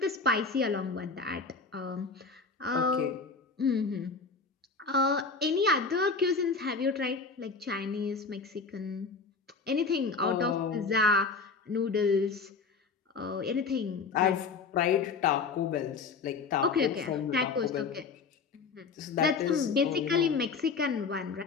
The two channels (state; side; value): quieter; right; 4.7 dB